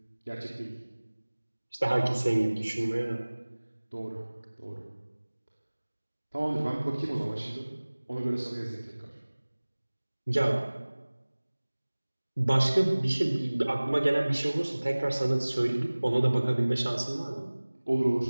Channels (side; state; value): both; inverted; correlation -1.00